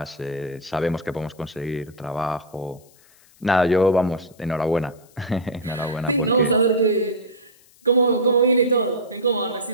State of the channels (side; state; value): left; noise; hiss, 29 dB below the sound